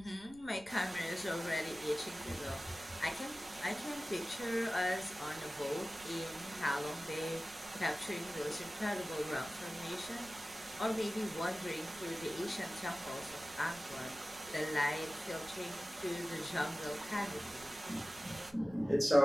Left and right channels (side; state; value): right; noise; rumble, 22 dB below the sound